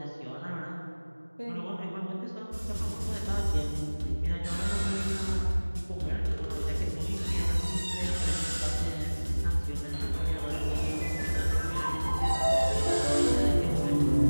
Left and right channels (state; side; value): inverted; both; correlation -1.00